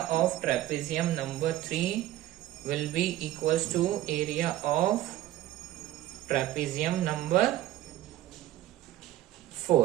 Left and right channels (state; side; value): quieter; left; 14.1 dB